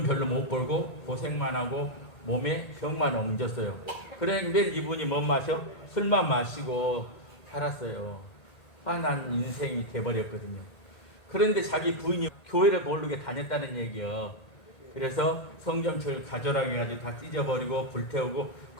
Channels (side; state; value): right; late; 1.8 ms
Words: 별로 못 벌고 고생만 하고 몸에 병만 옮겼어요. 그래 매일 이분이 뭐 마셔? 술만 마시고 살았어요. 화난 인생이 돼버렸거든요. 그런데 자기 부인이 교회를 모르게 다녔다는 얘기요. 그래서 성경책을 가져라고 해가지고 다 찢어버리고 불태우고